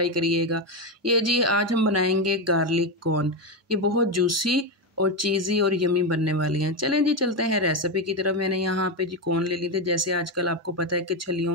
करिएगा। ये जी आज हम बनाएंगे गार्लिक कॉर्न। ये बहुत जूसी और चीज़ी और यमी बनने वाली हैं। चलें जी चलते हैं रेसिपी की तरफ। मैंने यहाँ पे जी कॉर्न ले ली थी। जैसे आजकल आपको पता है कि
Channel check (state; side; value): normal; both; correlation 0.10